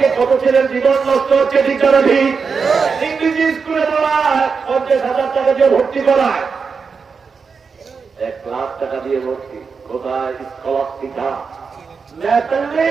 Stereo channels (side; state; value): left; quieter; 5.4 dB